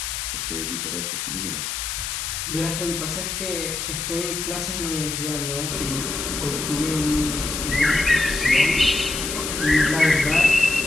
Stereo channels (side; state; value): left; noise; hiss, 3 dB below the sound